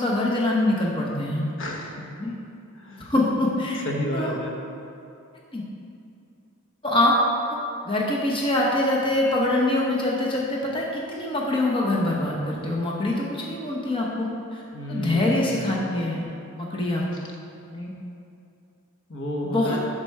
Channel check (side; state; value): both; normal; correlation 0.49